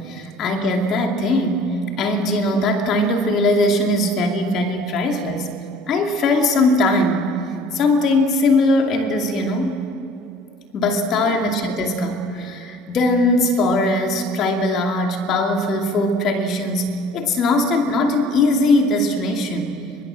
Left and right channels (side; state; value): both; normal; correlation 0.51